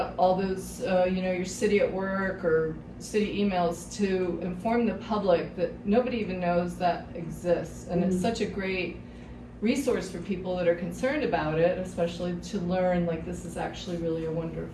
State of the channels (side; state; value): both; identical; correlation 1.00